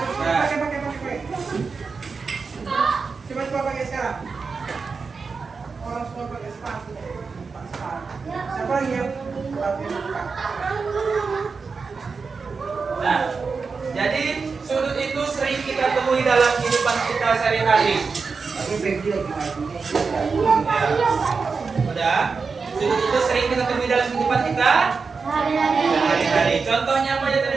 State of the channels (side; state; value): left; quieter; 4.9 dB